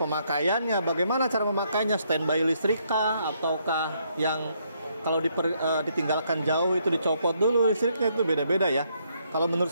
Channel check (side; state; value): both; inverted; correlation -0.73